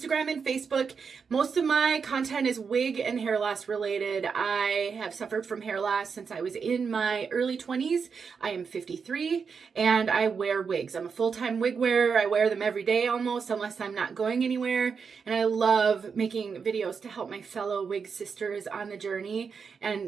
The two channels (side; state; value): left; quieter; 5.8 dB